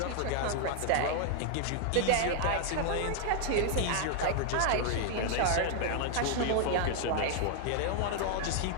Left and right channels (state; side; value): different; both; correlation 0.00